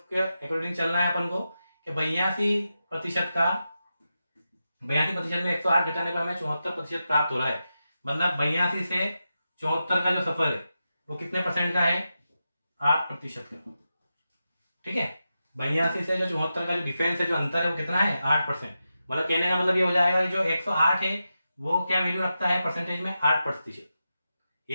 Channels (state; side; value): inverted; both; correlation -0.90